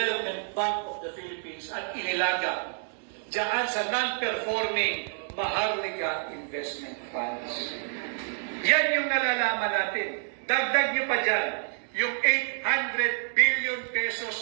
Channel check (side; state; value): left; silent; digital silence